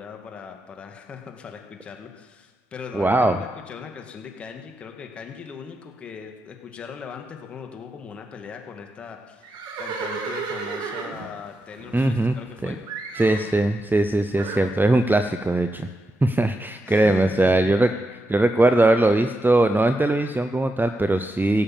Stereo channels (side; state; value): both; normal; correlation 0.87